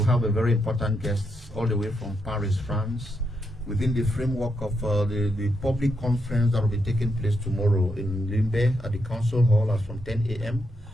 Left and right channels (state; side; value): normal; both; correlation 0.82